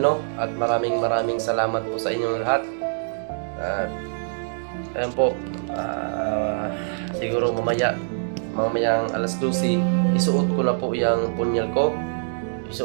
At maraming salamat po sa inyong lahat. At ayan po, siguro mamayang alas 12 isuot ko na po yung punyal ko.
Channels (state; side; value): silent; left; digital silence